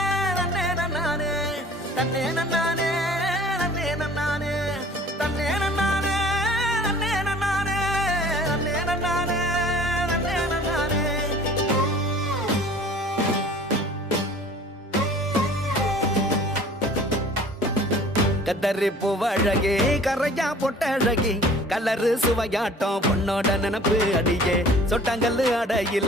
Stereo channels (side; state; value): both; normal; correlation 0.49